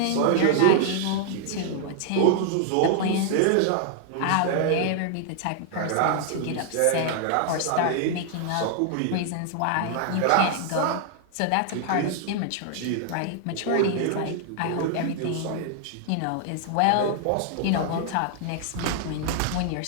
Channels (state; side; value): different; both; correlation 0.00